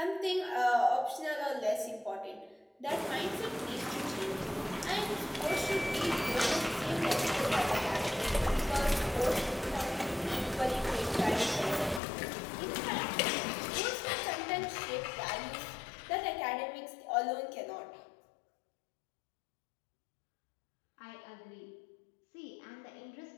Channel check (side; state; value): right; drops out; at 12.0 s